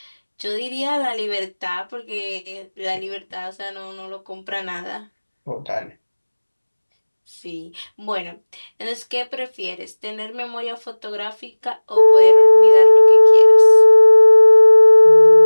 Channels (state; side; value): inverted; both; correlation -1.00